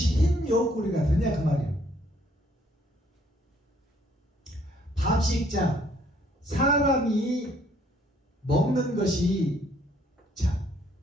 흰 여우 꼬리가 되냐 그 말이에요. 밥식자, 사람이 먹는 것이, 자,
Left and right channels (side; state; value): both; normal; correlation 0.64